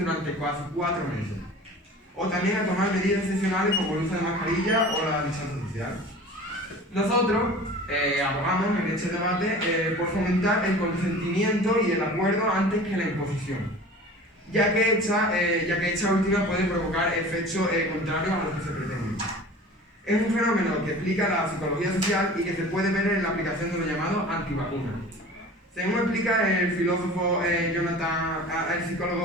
casi 4 meses. O también a tomar medidas excepcionales como el uso de mascarilla o la distancia social. Nosotros abogamos en este debate por fomentar el consentimiento y el acuerdo antes que la imposición, ya que esta última puede provocar efectos contrarios a los que se pretenden. Es un fenómeno que explica la psicología social y que se puede ver en la aplicación de lo llamado antivacunas. Según explica el psicólogo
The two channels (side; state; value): both; normal; correlation 0.40